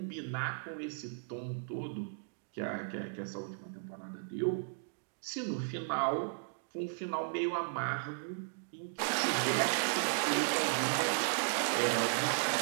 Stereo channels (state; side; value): silent; left; digital silence